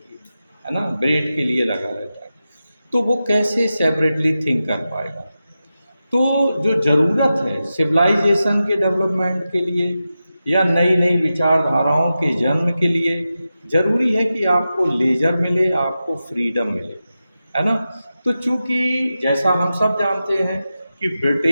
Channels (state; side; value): inverted; both; correlation -0.92